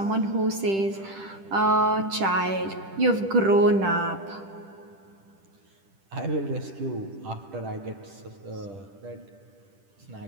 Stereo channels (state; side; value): late; left; 10 ms